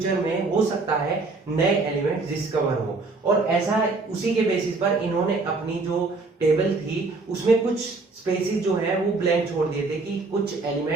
में हो सकता है नए एलिमेंट्स डिस्कवर हो, और ऐसा उसी के बेसिस पर इन्होंने अपनी जो टेबल थी उसमें कुछ स्पेसिस जो है वो ब्लैंक छोड़ दिए थे कि कुछ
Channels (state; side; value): quieter; left; 3.7 dB